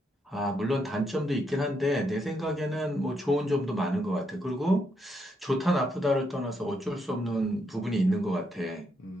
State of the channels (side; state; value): both; normal; correlation 0.78